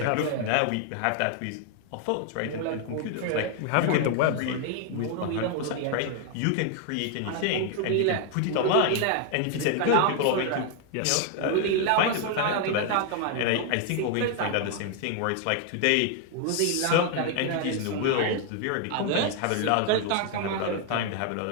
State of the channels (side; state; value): both; different; correlation 0.00